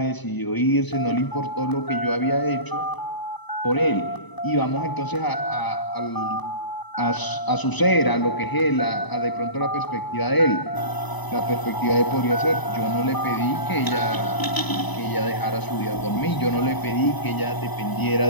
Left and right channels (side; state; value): right; late; 1.0 ms